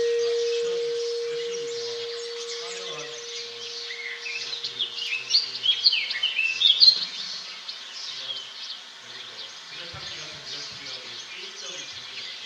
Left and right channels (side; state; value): both; identical; correlation 1.00